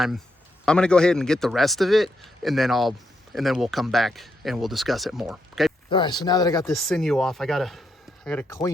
I'm gonna go ahead and get the rest of it, and then we'll come back and we'll discuss it more. Okay. All right. So now that I got this sinew off, I gotta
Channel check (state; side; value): normal; both; correlation 0.81